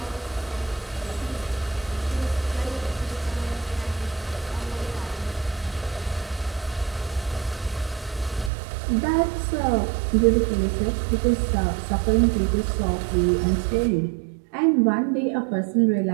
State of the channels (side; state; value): left; drops out; at 8.5 s